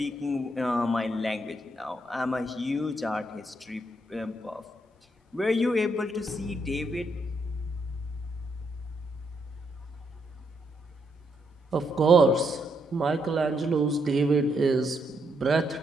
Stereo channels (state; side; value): normal; both; correlation 0.77